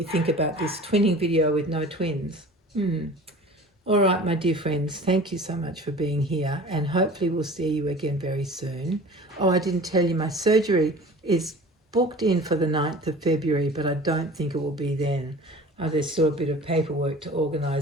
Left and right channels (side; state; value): both; normal; correlation 0.41